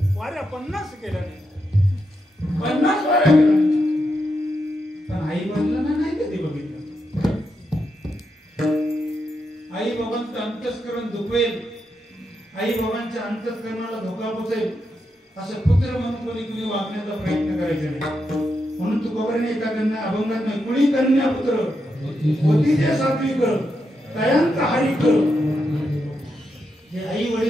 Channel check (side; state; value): both; normal; correlation 0.84